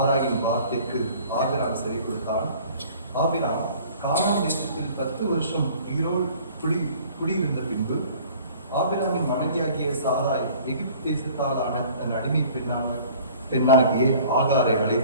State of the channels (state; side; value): inverted; both; correlation -0.50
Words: வார்த்தைக்கு ஆபிராம் சரி கொடுத்தான். ஆபிராம் கானான் தேசத்தில் 10 வருஷம் குடியிருந்த பின்பு ஆபிராமின் மனைவியாகிய சாராய் எகிப்து தேசத்தாலான தன் அடிமை பெண்ணாகிய ஆகாரை